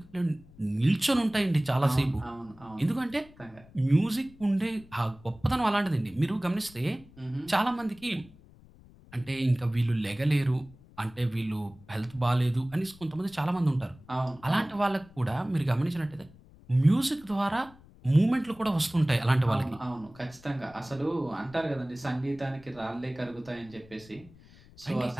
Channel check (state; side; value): noise; left; rumble, 24 dB below the sound